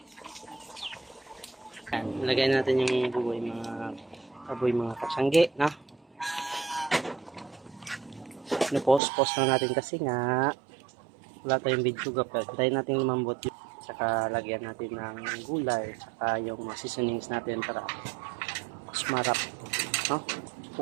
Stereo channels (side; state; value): left; drops out; at 9.0 s